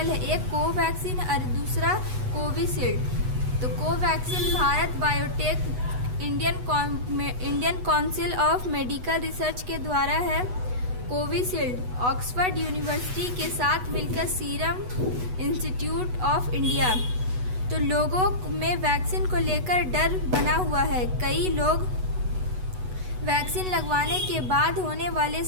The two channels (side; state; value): left; late; 8.1 ms